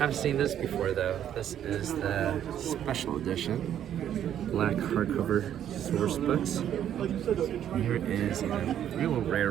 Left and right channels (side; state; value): left; quieter; 10.3 dB